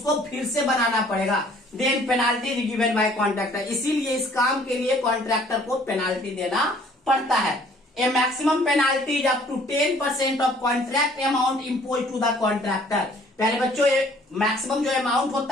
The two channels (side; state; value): both; normal; correlation 0.57